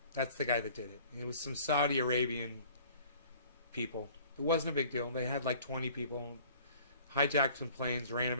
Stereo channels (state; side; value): inverted; both; correlation -0.50